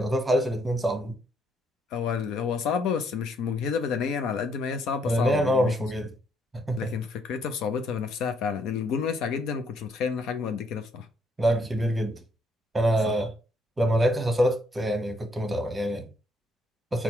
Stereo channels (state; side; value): normal; both; correlation 0.71